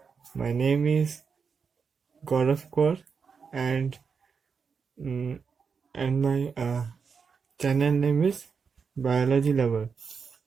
My name is Gaurav Kaur and mm, my channel name is Biology Lover.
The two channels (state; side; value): quieter; left; 5.8 dB